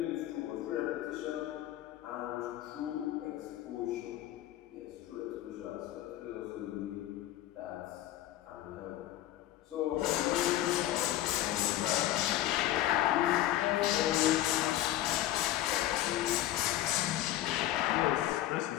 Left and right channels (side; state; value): right; quieter; 14.0 dB